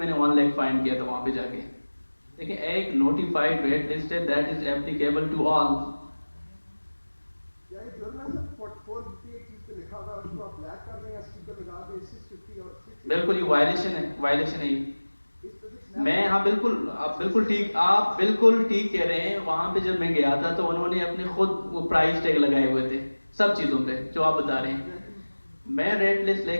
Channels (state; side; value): inverted; both; correlation -1.00